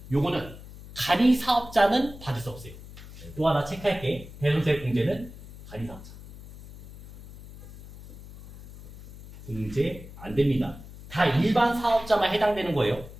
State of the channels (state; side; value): noise; left; hum, 16 dB below the sound